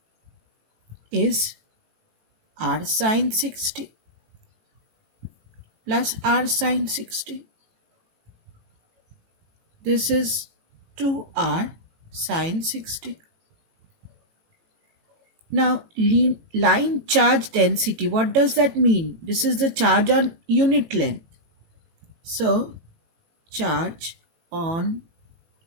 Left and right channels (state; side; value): late; left; 18 ms